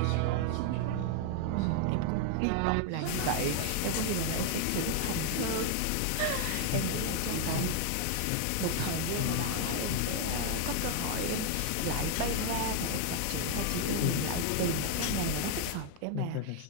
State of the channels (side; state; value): both; different; correlation 0.00